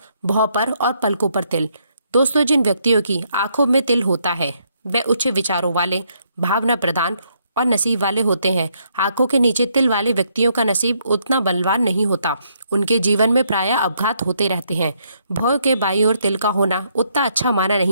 भौं पर और पलकों पर तिल। दोस्तों, जिन व्यक्तियों की आंखों में तिल होता है वे उच्च विचारों वाले, भावना प्रधान और नसीब वाले होते हैं। आंखों के नीचे तिल वाले व्यक्तियों का नसीब उतना बलवान नहीं होता। उनके जीवन में प्रायः अपघात होते रहते हैं। भौं के बाईं ओर तिल का होना उतना अच्छा माना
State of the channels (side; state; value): both; inverted; correlation -0.73